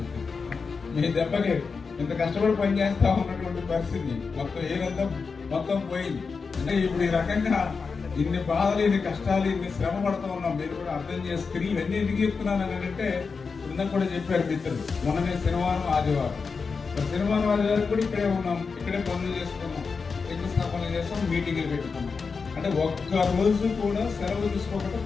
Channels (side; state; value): right; quieter; 5.0 dB